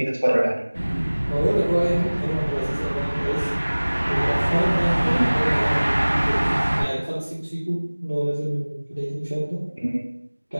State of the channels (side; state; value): both; inverted; correlation -1.00